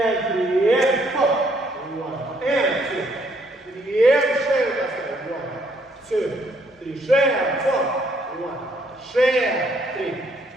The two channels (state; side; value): normal; both; correlation 0.68